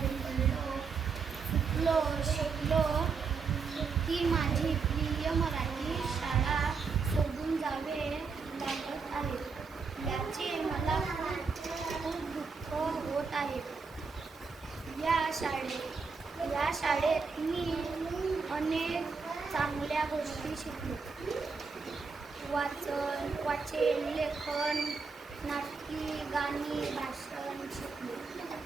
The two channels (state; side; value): quieter; left; 5.0 dB